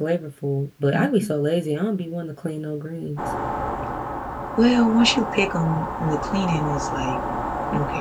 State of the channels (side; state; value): both; identical; correlation 1.00